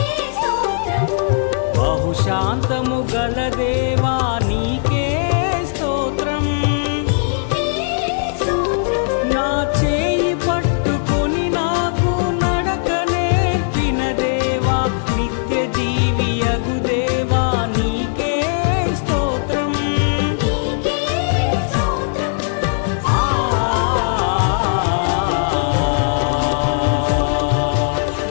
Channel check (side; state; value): right; silent; digital silence